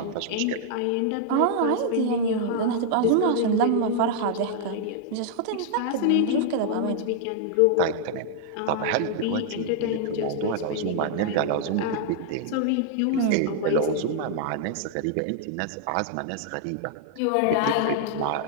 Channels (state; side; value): different; both; correlation -0.01